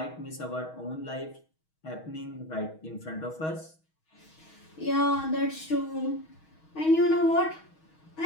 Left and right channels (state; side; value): late; right; 6.3 ms